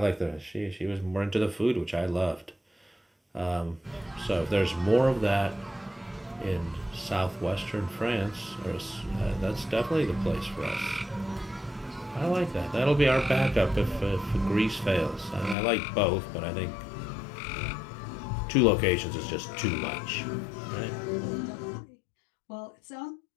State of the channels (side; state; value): right; drops out; at 15.6 s